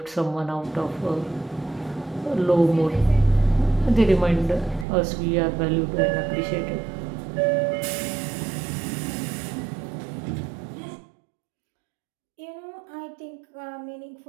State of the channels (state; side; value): drops out; left; at 4.9 s